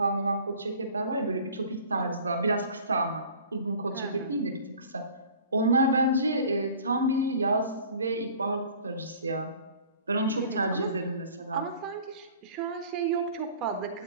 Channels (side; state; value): both; inverted; correlation -0.47